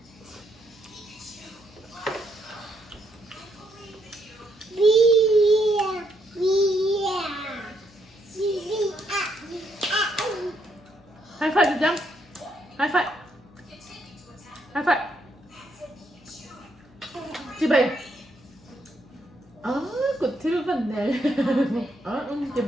hai phải được chăng hai phải chị bảy cột thiếu vấn đề chị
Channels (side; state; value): left; noise; hum, 27 dB below the sound